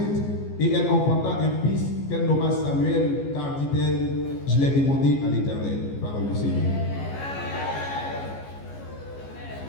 et elle enfanta un fils qu'elle nomma Samuel, car dit-elle, je l'ai demandé à l'Éternel. Parole du Seigneur.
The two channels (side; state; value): right; late; 14 ms